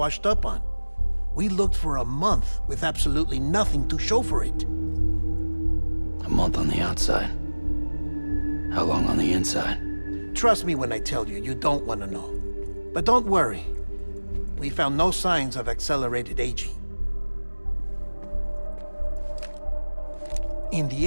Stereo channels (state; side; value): inverted; both; correlation -1.00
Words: up on. We looked for a month with absolutely nothing to show for it. A month on the outside. How long on the inside? Trust me when I tell you, you don't want to know. But don't worry. We found no signs of accelerated aging. In the